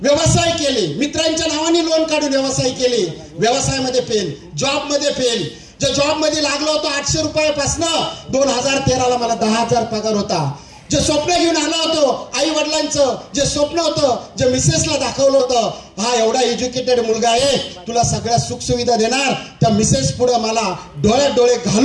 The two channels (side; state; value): both; identical; correlation 1.00